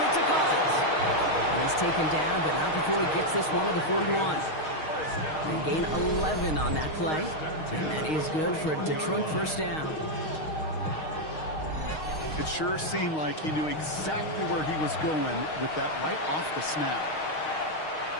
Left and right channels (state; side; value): late; right; 6.4 ms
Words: to Collins. And he's taken down, but not before he gets this one to the 41. They gain 11 on that play. And that is good for a Detroit first down. It sure seemed like he knew exactly where he was going with that right off the snap.